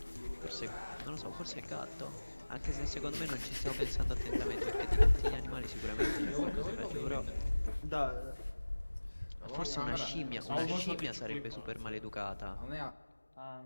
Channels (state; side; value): inverted; both; correlation -1.00